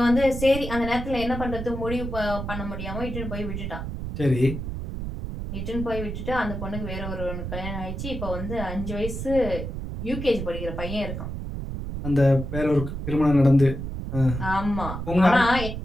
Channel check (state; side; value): noise; right; rumble, 6 dB below the sound